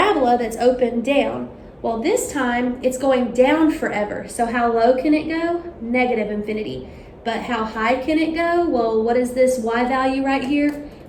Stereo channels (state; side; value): identical; both; correlation 1.00